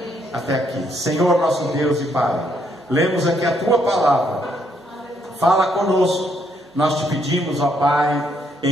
Até aqui. Senhor nosso Deus e Pai, lemos aqui a Tua palavra. Fala conosco, nós te pedimos, ó Pai,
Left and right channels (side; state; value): both; normal; correlation 0.72